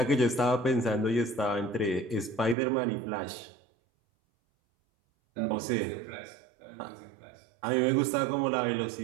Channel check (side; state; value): left; drops out; at 2.6 s